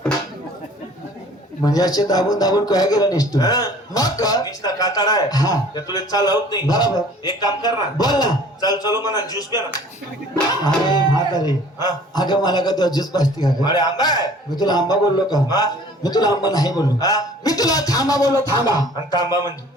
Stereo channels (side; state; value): both; normal; correlation 0.50